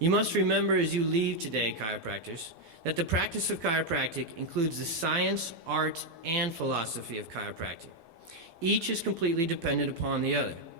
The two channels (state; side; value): late; left; 12 ms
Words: must remember as you leave today, chiropractors, that the practice of chiropractic includes the science, art, and philosophy of chiropractic. Each is completely dependent upon the other.